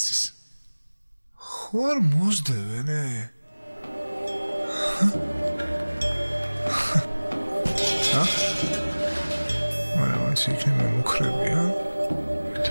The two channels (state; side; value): inverted; both; correlation -1.00